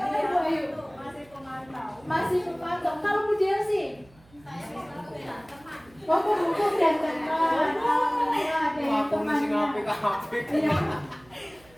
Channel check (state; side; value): noise; right; hum, 28 dB below the sound